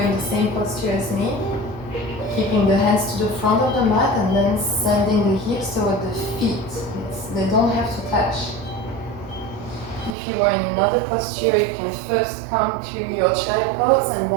in the same posture as me, keeping the hands to the front of the mat and then sending the hips toward the feet. They don't have to touch. If you are in another posture, you can first come to your child pose and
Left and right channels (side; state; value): left; drops out; at 10.2 s